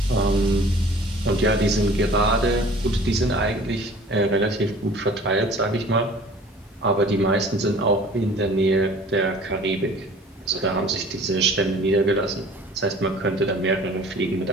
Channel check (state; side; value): normal; both; correlation 0.48